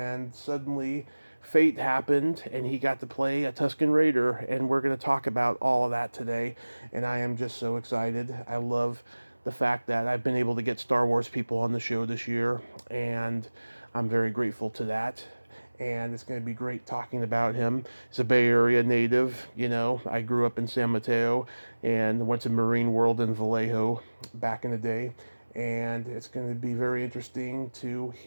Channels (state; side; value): inverted; both; correlation -1.00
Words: suddenly fate happened and he got to play a Tusken Raider, and we're going to talk about all of that today, and I am just so excited. I love the fact that I've been able to get Star Wars people on the show this year, and I'm very grateful to that. And it's going to be great talking about him. He's a Bay Area native. I grew up in San Mateo and went to Marine World in Vallejo back in the day. And it's going to be very interesting to